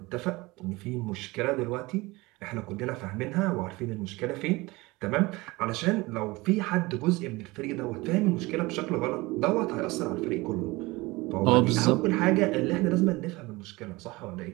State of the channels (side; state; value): left; quieter; 22.1 dB